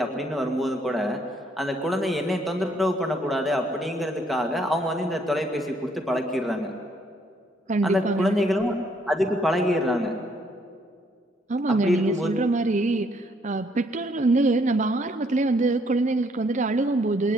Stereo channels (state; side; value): normal; both; correlation 0.68